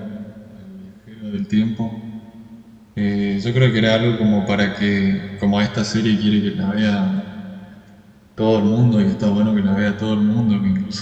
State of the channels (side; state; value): both; identical; correlation 1.00